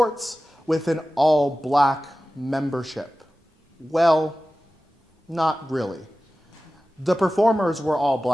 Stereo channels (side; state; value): both; normal; correlation 0.96